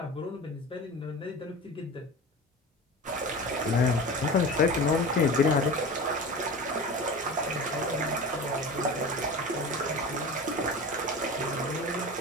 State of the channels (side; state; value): both; normal; correlation 0.32